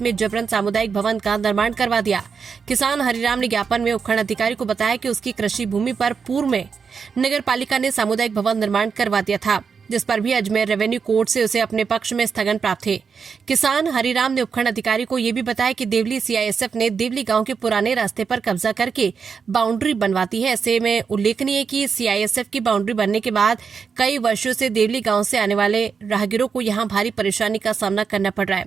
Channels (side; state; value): left; quieter; 5.9 dB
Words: में जबरन सामुदायिक भवन का निर्माण करवा दिया। किसान हरिराम ने ज्ञापन में उपखंड अधिकारी को बताया कि उसकी कृषि भूमि पर पूर्व में नगरपालिका ने सामुदायिक भवन निर्माण करवा दिया था, जिस पर भी अजमेर रेवेन्यू कोर्ट से उसे अपने पक्ष में स्थगन प्राप्त है। किसान हरिराम ने उपखंड अधिकारी को यह भी बताया कि देवली सीआईएसएफ ने देवली गांव के पुराने रास्ते पर कब्जा करके बाउंड्री बनवाती है। ऐसे में उल्लेखनीय है कि सीआईएसएफ की बाउंड्री बनने के बाद कई वर्षों से देवली गांव से आने वाले राहगीरों को यहां भारी परेशानी का सामना करना पड़ रहा